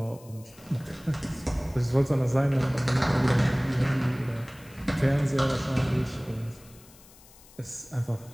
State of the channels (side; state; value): left; noise; hiss, 24 dB below the sound